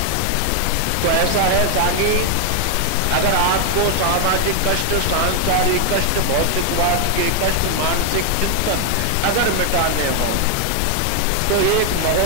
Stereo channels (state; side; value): different; both; correlation 0.00